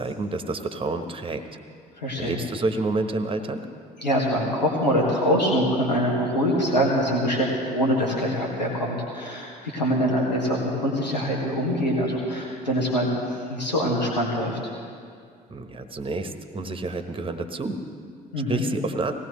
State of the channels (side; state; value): both; normal; correlation 0.36